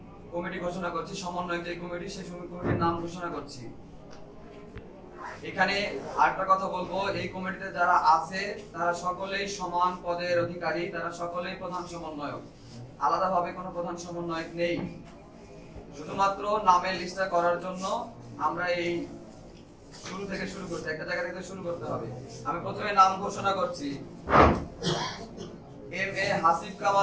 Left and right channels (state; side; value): identical; both; correlation 1.00